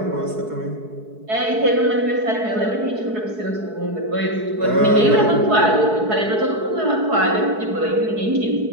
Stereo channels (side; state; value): left; late; 4.7 ms